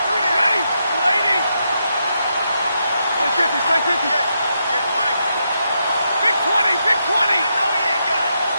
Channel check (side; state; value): both; inverted; correlation -0.82